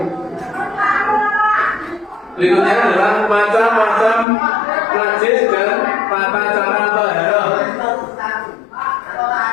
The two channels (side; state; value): right; drops out; at 4.2 s